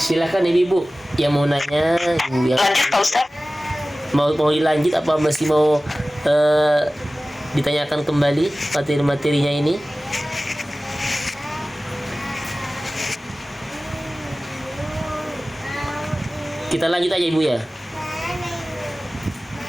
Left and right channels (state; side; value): normal; both; correlation 0.97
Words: Ibu yang mau nanya. Lanjut Pak Ustaz. Mau dilanjut apa masih mau ditanyakan kembali materi-materinya ini? Kita lanjut aja Ibu ya.